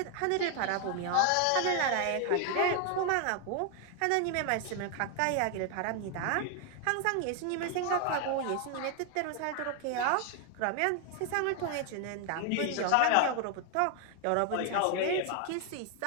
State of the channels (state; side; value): different; both; correlation 0.01